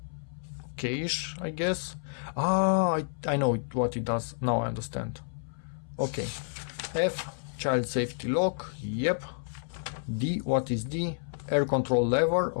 Cache, I guess. I know what it does. Now I understand. Okay. F. Child safety lock. Yep. D. What is D? Air control lever.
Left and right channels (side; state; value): right; silent; 58 dB below the other